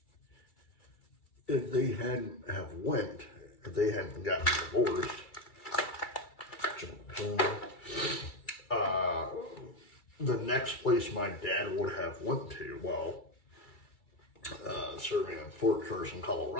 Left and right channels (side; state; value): right; late; 2.3 ms